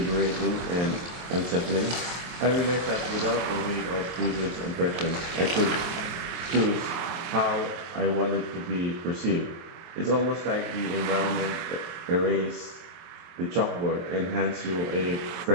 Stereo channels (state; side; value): late; left; 23 ms